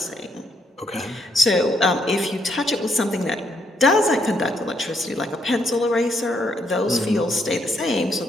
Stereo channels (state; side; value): normal; both; correlation 0.74